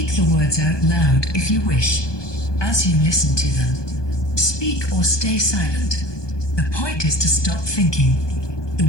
the words out loud if you wish, as you listen to them. Speak or stay silent. The point is to stop thinking.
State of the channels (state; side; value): late; right; 1.2 ms